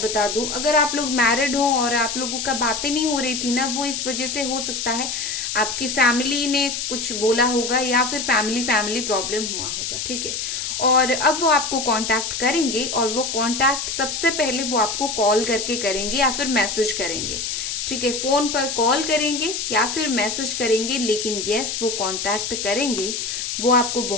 बता दूं, अगर आप लोग मैरिड हो और आप लोगों का बातें नहीं हो रही थी ना, वो इस वजह से हो सकता है आपकी फैमिली ने कुछ बोला होगा या फिर फैमिली प्रॉब्लम हुआ होगा। ठीक है, और अब वो आपको कांटेक्ट करेंगे और वो कांटेक्ट सबसे पहले वो आपको कॉल करके करेंगे या फिर मैसेज करेंगे। ठीक है, फोन पर कॉल करेंगे या फिर मैसेज करेंगे, लेकिन यस वो कांटेक्ट करेंगे। वो आपको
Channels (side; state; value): left; noise; hiss, 3 dB below the sound